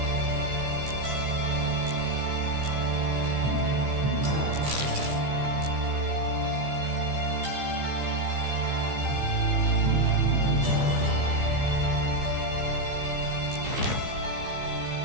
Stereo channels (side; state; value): left; late; 15 ms